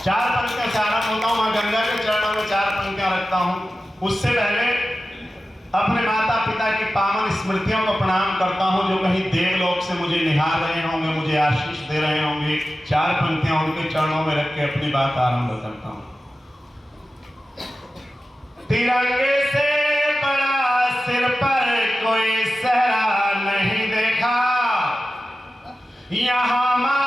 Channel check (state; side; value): normal; both; correlation 0.94